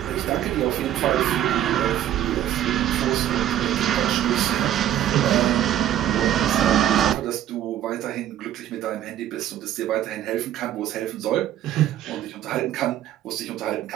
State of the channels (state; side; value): quieter; left; 11.7 dB